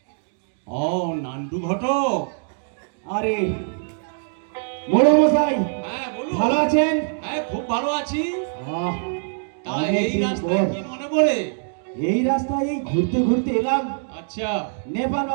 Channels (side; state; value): left; silent; digital silence